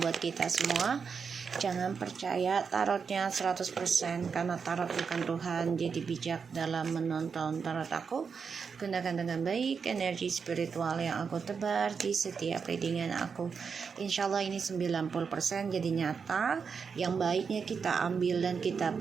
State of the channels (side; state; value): left; quieter; 5.9 dB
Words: kita semua. Jangan percaya tarotnya 100% karena tarot bukan Tuhan. Jadi bijak dalam menonton tarot aku. Gunakan dengan baik energi spiritual yang aku tebar di setiap readingan aku. Insyaallah ini 90% jadi nyata. Yang baiknya kita ambil dan kita